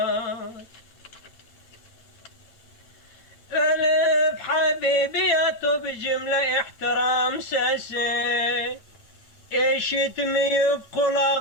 Ölüp Habibi yatıp cümle ihtiram sesi, işitmeyip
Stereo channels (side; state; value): right; late; 8.9 ms